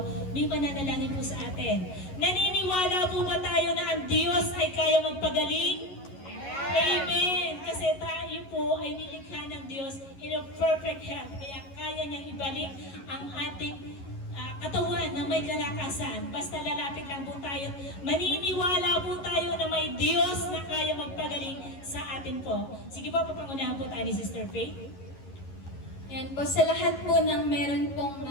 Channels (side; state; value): right; late; 11 ms